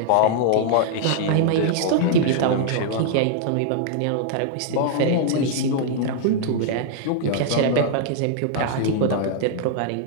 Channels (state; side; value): different; both; correlation -0.01